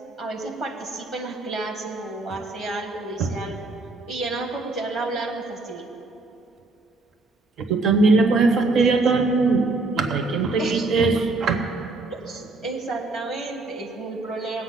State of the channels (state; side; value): quieter; left; 3.3 dB